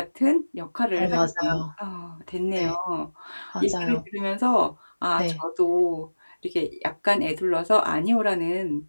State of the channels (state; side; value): inverted; both; correlation -1.00